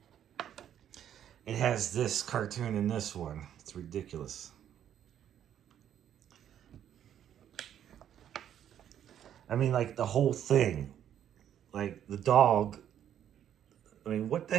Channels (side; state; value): left; quieter; 10.1 dB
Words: It has this cartoon in this one. It's ridiculous. I mean, like the whole thing. Like the dog. I mean, what the